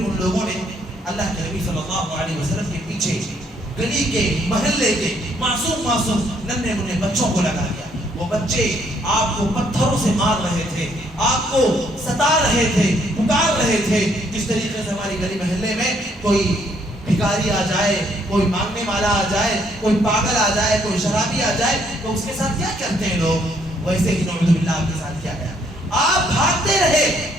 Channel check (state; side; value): normal; both; correlation 0.68